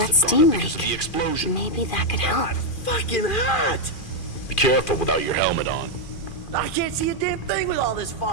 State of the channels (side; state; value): right; late; 2.4 ms